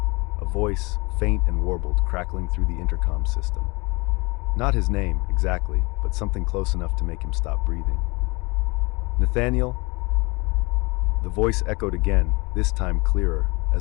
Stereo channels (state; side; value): quieter; right; 26.6 dB